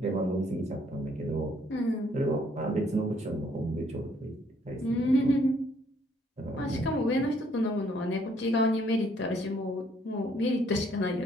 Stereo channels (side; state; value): both; normal; correlation 0.66